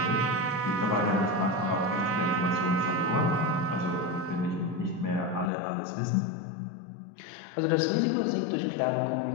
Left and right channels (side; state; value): right; drops out; at 5.5 s